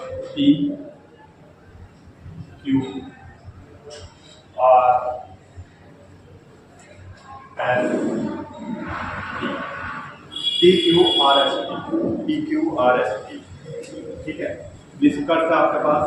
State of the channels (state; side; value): identical; both; correlation 1.00